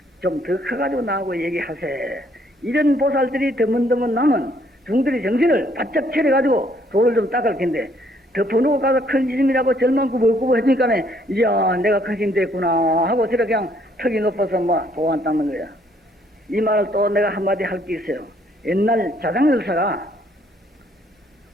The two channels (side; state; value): both; normal; correlation 0.66